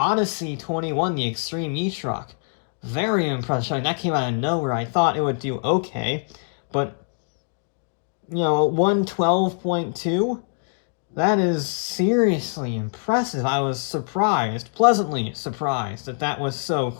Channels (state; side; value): silent; right; digital silence